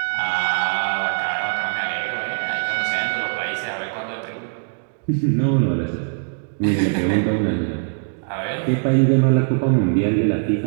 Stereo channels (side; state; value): left; silent; digital silence